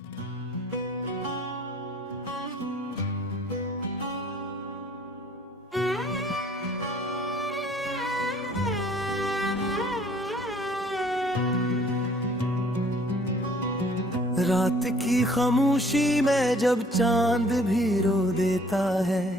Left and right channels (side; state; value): both; normal; correlation 0.57